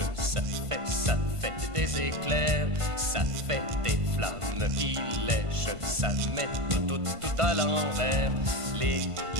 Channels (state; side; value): late; left; 1.5 ms